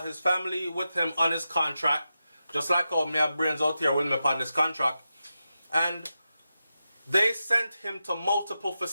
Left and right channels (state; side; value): inverted; both; correlation -0.90